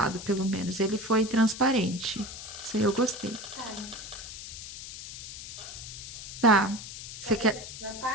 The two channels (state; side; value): noise; left; hiss, 11 dB below the sound